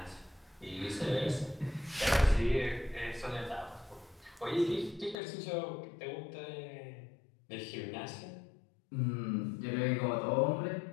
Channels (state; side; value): drops out; right; at 5.2 s